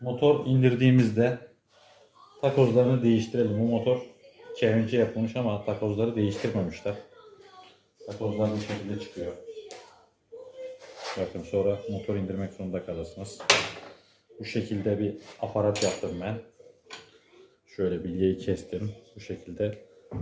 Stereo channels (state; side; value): identical; both; correlation 1.00